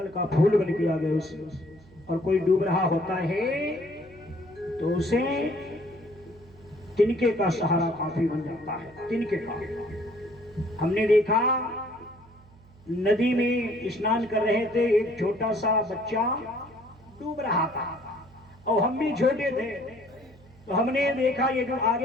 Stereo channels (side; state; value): right; noise; hum, 25 dB below the sound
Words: का फूल बन के आ गए उसमें। और कोई डूब रहा होता है तो उसे तिनके का सहारा काफी बन जाता है। तिनके का हमने देखा, नदी में स्नान कर रहे थे, एक छोटा सा बच्चा डूब रहा था और हम भी छोटे थे, तो हमने देखा ये जो